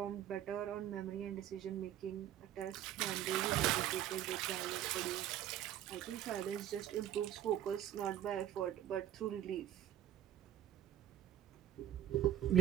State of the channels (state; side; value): quieter; left; 11.5 dB